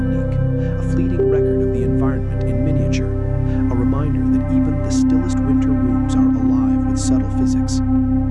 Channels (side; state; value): both; identical; correlation 1.00